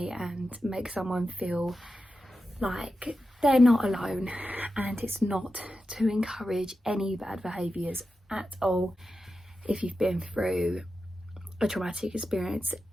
and make someone feel like they're not alone, and it's not to encourage any bad behaviours at all. If you've been through a traumatic experience,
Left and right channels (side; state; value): both; normal; correlation 0.91